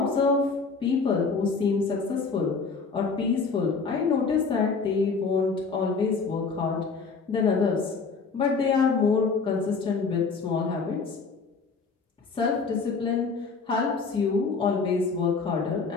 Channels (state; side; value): quieter; right; 4.7 dB